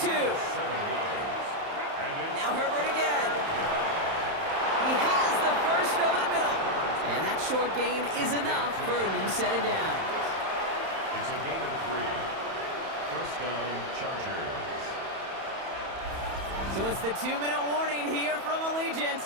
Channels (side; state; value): left; late; 31 ms